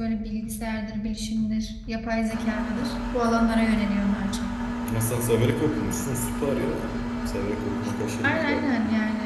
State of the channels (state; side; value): identical; both; correlation 1.00